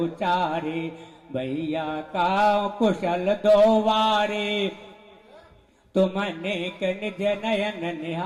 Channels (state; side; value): identical; both; correlation 1.00